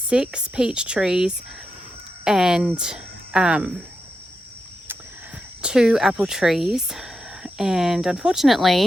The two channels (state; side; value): normal; both; correlation 0.87